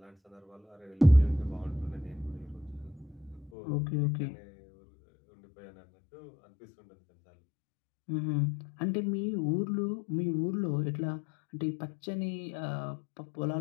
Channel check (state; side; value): drops out; right; at 3.5 s